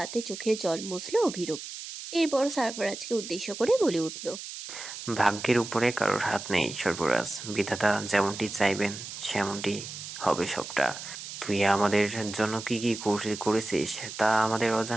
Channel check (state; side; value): noise; right; hiss, 10 dB below the sound